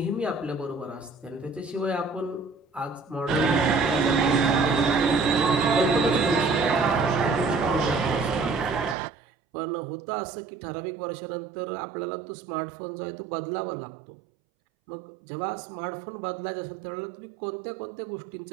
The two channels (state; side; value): drops out; left; at 9.0 s